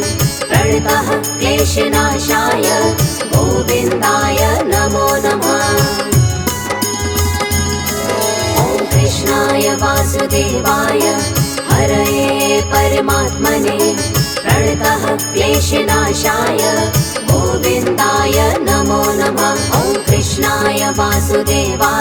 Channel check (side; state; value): both; identical; correlation 1.00